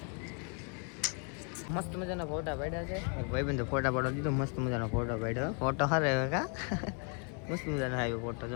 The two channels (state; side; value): quieter; right; 39.3 dB